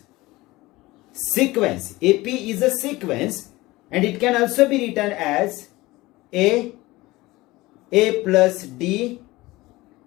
sequence. AP is a sequence and it can also be written as A plus D,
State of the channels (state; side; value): quieter; right; 19.9 dB